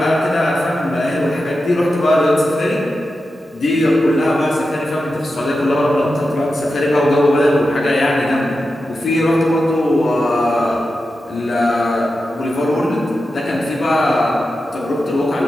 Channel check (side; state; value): both; normal; correlation 0.91